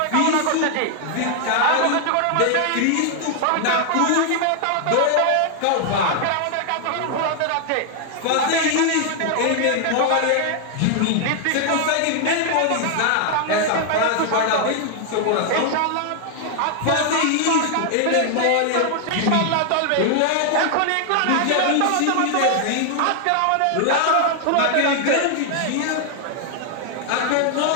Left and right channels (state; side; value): different; both; correlation 0.00